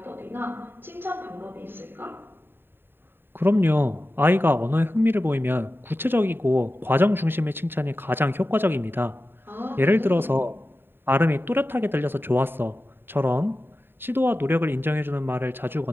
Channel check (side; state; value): left; late; 0.10 ms